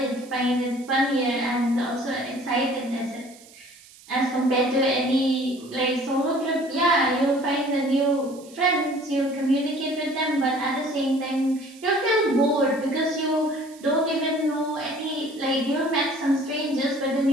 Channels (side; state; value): right; noise; hiss, 23 dB below the sound